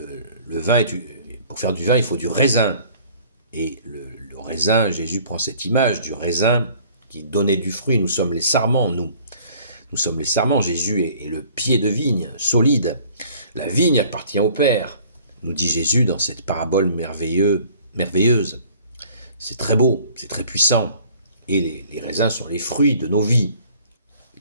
vin, pour faire du vin, il faut du raisin. Et le raisin, Jésus prend cette image du raisin qui donnait du fruit. Nous sommes les sarments, nous. Nous sommes les sarments. Jésus est le pied de vigne, solide. La vigne appartient au Père, nous dit Jésus dans cette parabole merveilleuse. C'est très beau, c'est très puissant. Et les raisins sont les fruits de nos vies,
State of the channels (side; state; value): both; inverted; correlation -0.53